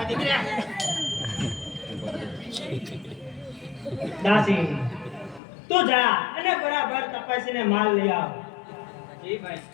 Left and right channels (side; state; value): right; drops out; at 5.4 s